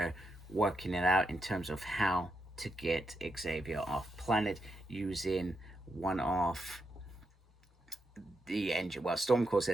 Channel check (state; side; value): normal; both; correlation 0.83